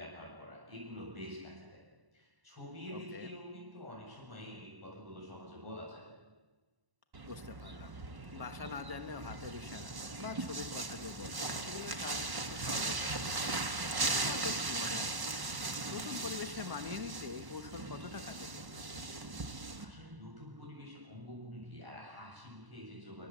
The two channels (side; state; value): left; late; 1.1 ms